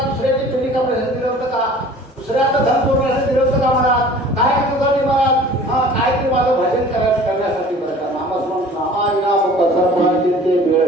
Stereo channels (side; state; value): both; normal; correlation 0.47